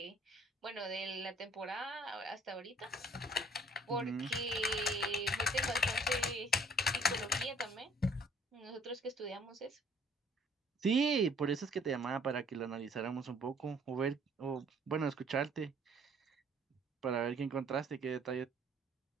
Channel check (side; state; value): both; normal; correlation 0.58